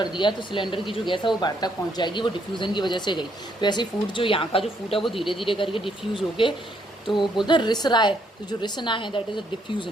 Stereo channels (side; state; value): both; normal; correlation 0.72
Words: दिया तो सिलेंडर की जो गैस है वो बाहर तक पहुँच जाएगी, वो डिफ्यूज़न की वजह से गई। तो ऐसे फूड जो यहाँ का जो फूड है वो धीरे धीरे करके डिफ्यूज़ होके, तो बोलते हैं रिस रहा है, तो जो रिसना है दैट इज अ